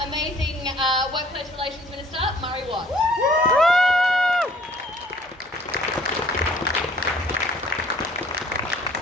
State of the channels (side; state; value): both; normal; correlation 0.56